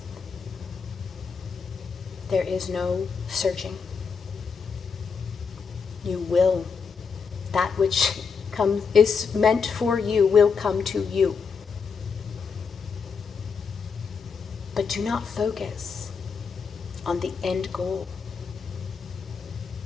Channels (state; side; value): quieter; right; 5.6 dB